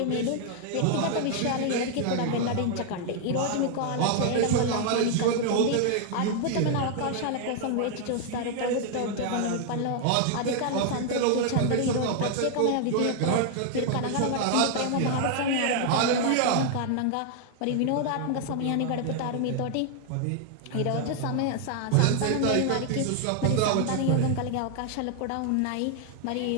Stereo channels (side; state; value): both; different; correlation 0.00